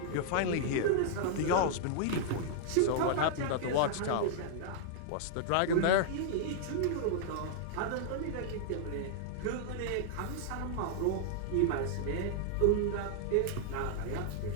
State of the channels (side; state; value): both; different; correlation -0.01